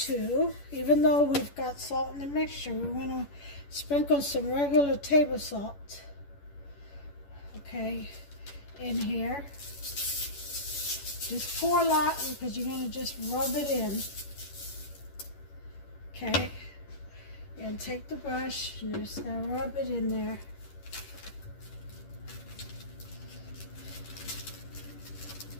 even though we've got salt in the mixture, we're going to sprinkle some regular table salt, okay, in here. Just pour a lot because you're going to just rub it in, okay, and take the brush and you're just going to rub it in there.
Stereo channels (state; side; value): late; right; 11 ms